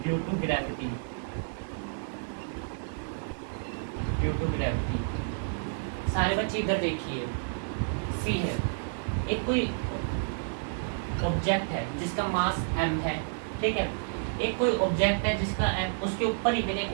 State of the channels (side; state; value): left; silent; digital silence